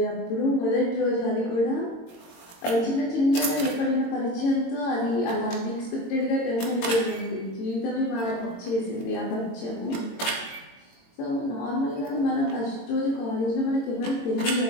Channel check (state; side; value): late; right; 22 ms